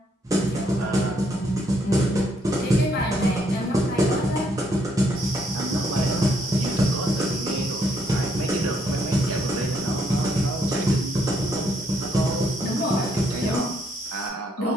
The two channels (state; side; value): normal; both; correlation 0.71